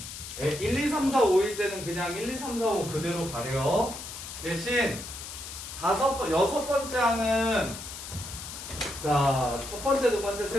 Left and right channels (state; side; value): noise; left; hiss, 10 dB below the sound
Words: 1, 2, 3, 4, 5일 때는 그냥 1, 2, 3, 4, 5 그대로 가려요. 대신 여섯 번째 항은 자, 첫 번째, 두 번째,